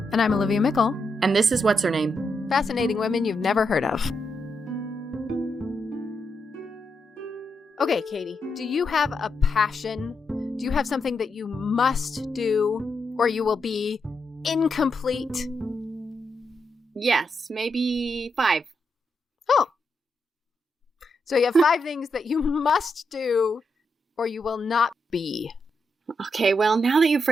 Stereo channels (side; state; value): both; normal; correlation 0.83